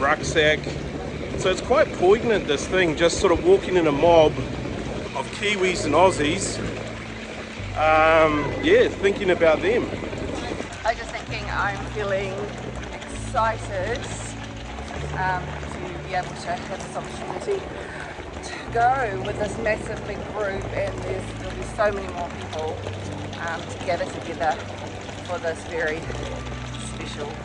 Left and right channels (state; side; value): identical; both; correlation 1.00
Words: So it's quite poignant, this thing, just sort of walking in a mob of Kiwis and Aussies, yeah, thinking about them. I was just thinking, I'm feeling excited to be able to have this opportunity to go with this massive big group, and there'll be so many more people to gather together for this very special